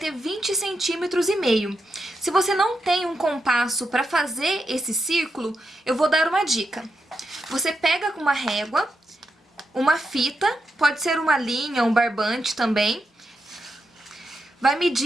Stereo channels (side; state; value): both; normal; correlation 0.85